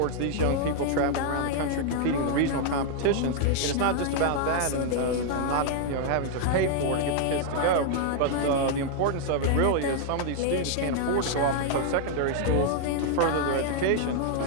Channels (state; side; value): different; both; correlation 0.00